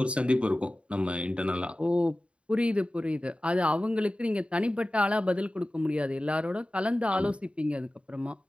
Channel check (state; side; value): late; left; 0.059 ms